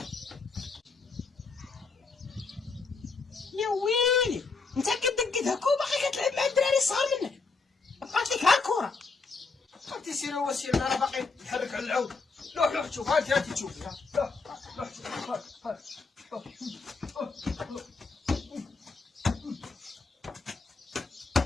يا ويلي انت كدقت هكا وباقي كتلعب مع الدراري الصغار منك. بقات لك ها الكورة. انت سير هو سير انا باقي نحرك على العود. روح شوف هاتي تشوفي ها. روح شوف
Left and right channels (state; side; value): quieter; right; 4.3 dB